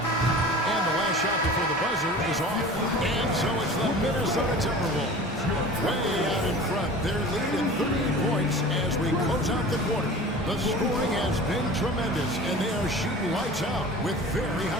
And the last shot before the buzzer is off. And so it's the Minnesota Timberwolves. Way out in front. They're leading 38 points as we close out the quarter. The scoring has been tremendous, and they are shooting lights out with very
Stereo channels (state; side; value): normal; both; correlation 0.39